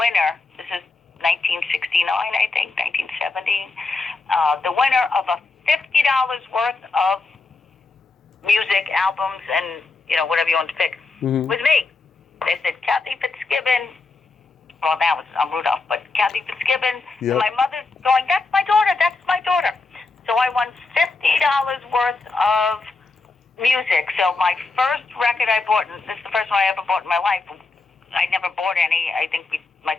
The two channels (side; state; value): right; quieter; 3.8 dB